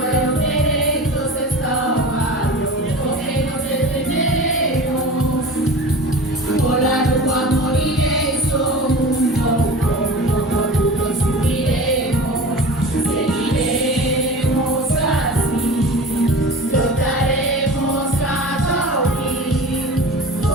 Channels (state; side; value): normal; both; correlation 0.36